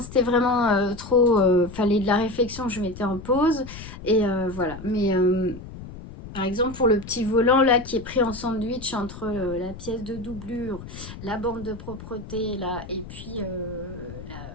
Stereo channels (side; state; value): left; noise; rumble, 13 dB below the sound